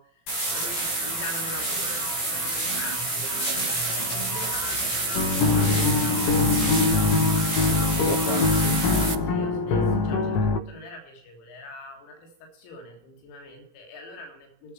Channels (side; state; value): right; late; 18 ms